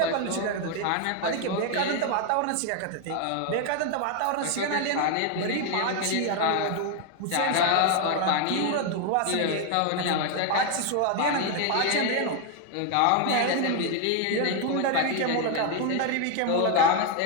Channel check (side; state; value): both; different; correlation 0.01